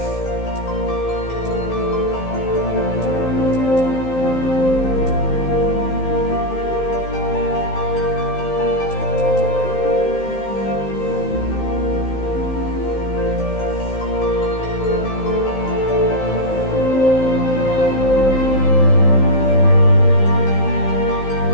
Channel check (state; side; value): late; right; 15 ms